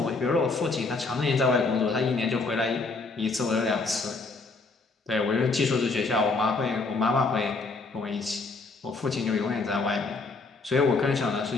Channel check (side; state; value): right; quieter; 3.8 dB